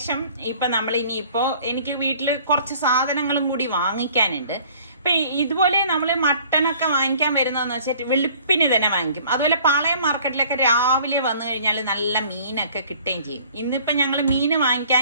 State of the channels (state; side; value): inverted; both; correlation -0.54